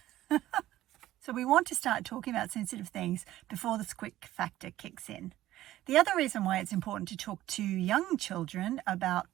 So we want to start talking about sensitive things before the squick factor kicks in. The other reason why it's important to talk to young children about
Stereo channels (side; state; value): left; quieter; 14.6 dB